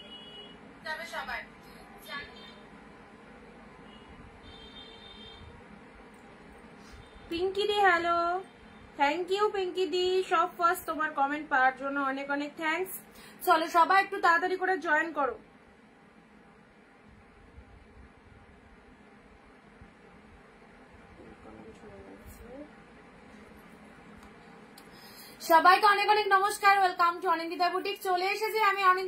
সবাই পিঙ্কি দি হ্যালো, থ্যাংক ইউ পিঙ্কি দি, সব ফার্স্ট তোমার কমেন্ট পাওয়ার জন্য অনেক অনেক থ্যাঙ্কস। চলো সবাই একটু তাড়াতাড়ি করে জয়েন করো। সবাইকে অনেক অনেক নমস্কার, ওয়েলকাম টু অনিন্দিতা বুটিক। চলে এসেছি আমি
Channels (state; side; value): identical; both; correlation 1.00